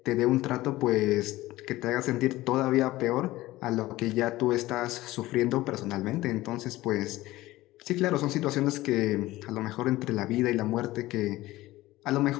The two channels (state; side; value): quieter; right; 17.5 dB